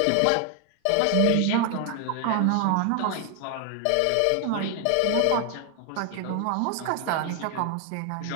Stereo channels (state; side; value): different; both; correlation 0.01